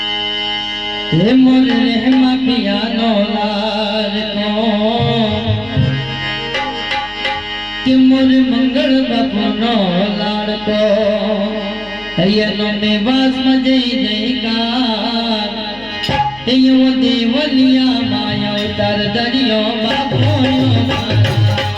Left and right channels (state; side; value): noise; left; hum, 23 dB below the sound